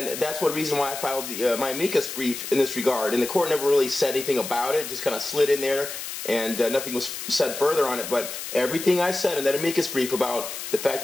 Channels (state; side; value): noise; left; hiss, 8 dB below the sound